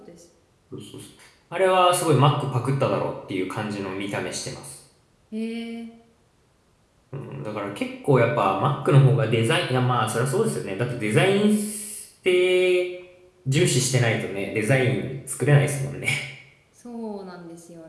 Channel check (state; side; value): identical; both; correlation 1.00